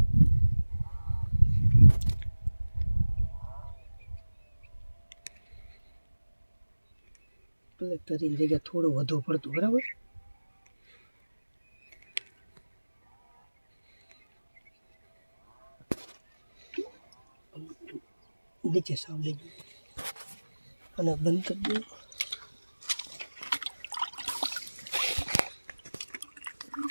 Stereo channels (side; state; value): both; inverted; correlation -1.00